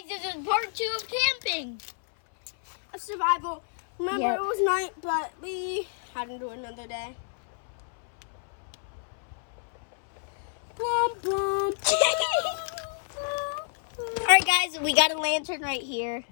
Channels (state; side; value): silent; right; 59 dB below the other